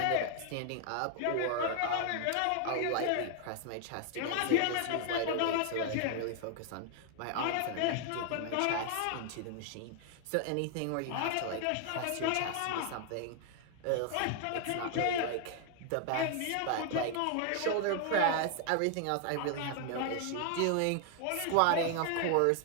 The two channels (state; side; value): different; both; correlation 0.00